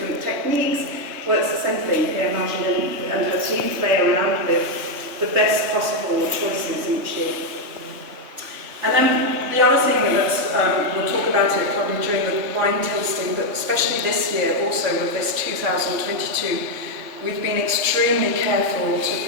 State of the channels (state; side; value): late; left; 3.2 ms